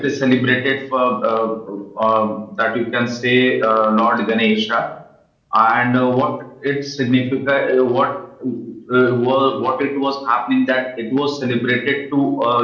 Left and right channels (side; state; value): both; identical; correlation 1.00